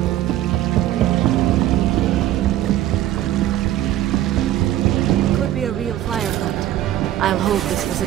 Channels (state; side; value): quieter; left; 13.4 dB